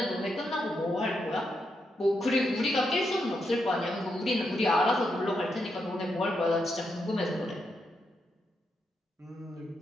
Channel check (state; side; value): normal; both; correlation 0.82